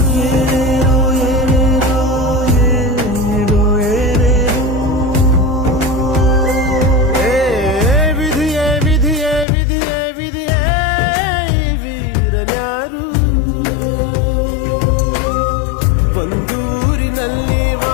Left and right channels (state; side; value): drops out; right; at 9.5 s